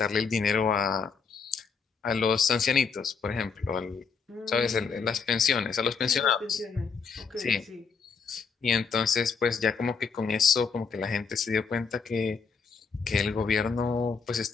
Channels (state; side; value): quieter; right; 5.4 dB